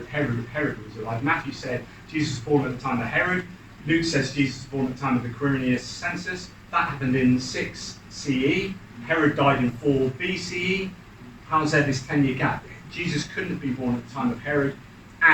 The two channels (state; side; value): identical; both; correlation 1.00